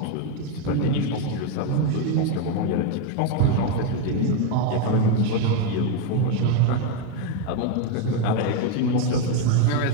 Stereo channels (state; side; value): different; both; correlation 0.02